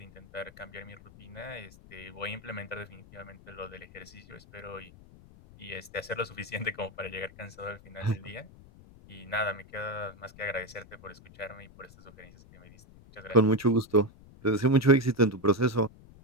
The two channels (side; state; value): left; noise; rumble, 21 dB below the sound